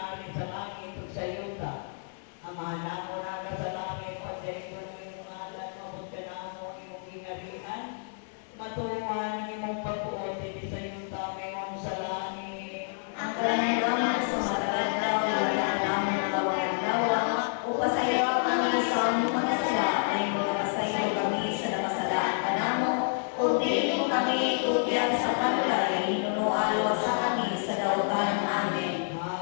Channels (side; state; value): right; silent; digital silence